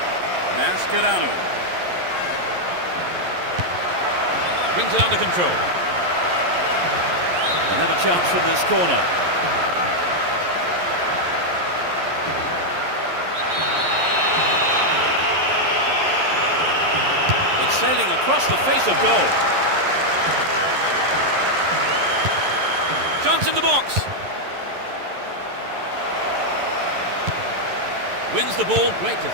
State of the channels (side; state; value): left; late; 11 ms